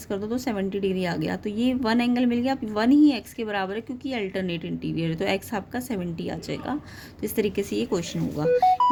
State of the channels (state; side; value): identical; both; correlation 1.00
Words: कर दो तो 70 डिग्री आ गया। तो ये 1 एंगल मिल गया। 1 ही एक्स के बराबर है क्योंकि अल्टरनेट इंटीरियर है, तो एक्स आपका 70 आ जाएगा। तो इस तरीके से ये क्वेश्चन होगा।